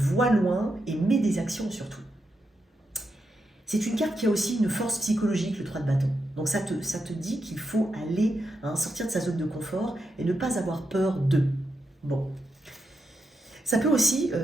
loin et mets des actions surtout. C'est une carte qui a aussi une force psychologique, le 3 de bâton. Donc ça te dit qu'il faut aller, hein, sortir de sa zone de confort et ne pas avoir peur d'eux. Bon. Ça peut aussi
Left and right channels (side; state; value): both; normal; correlation 0.84